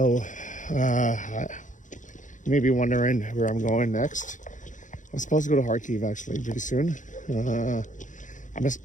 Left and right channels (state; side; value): late; right; 0.37 ms